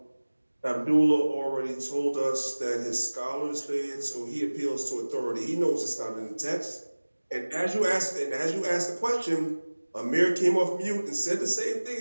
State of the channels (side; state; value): both; inverted; correlation -1.00